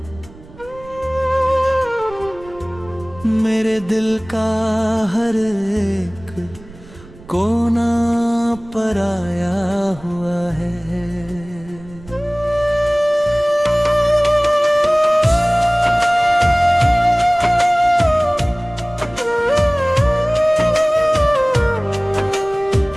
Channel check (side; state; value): right; noise; rumble, 20 dB below the sound